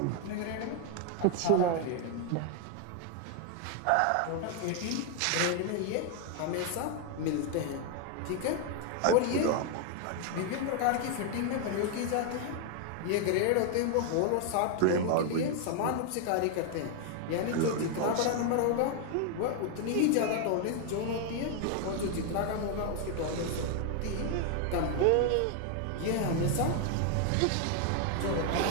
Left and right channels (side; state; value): both; different; correlation 0.00